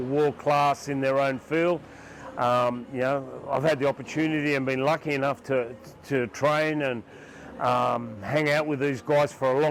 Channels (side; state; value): both; identical; correlation 1.00